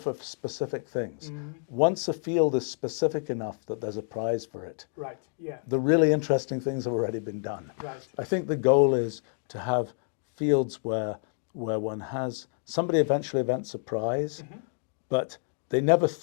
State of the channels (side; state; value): right; silent; digital silence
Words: specific things. Once a field is specific enough that there's a prize for it, the really interesting things have already been done. I think the goal is to have fields where somebody eventually invents a prize, but they never